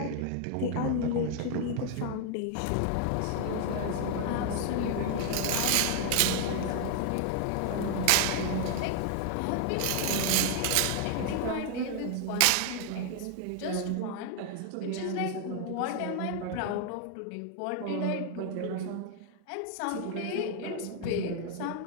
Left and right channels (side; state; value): both; different; correlation 0.00